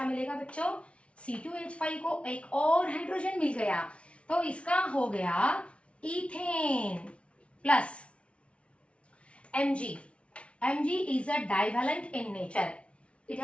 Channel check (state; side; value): late; right; 0.061 ms